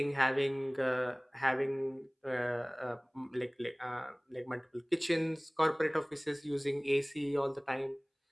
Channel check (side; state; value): both; identical; correlation 1.00